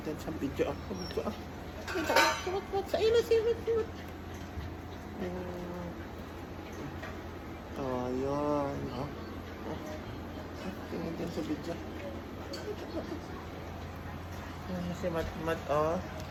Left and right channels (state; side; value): identical; both; correlation 1.00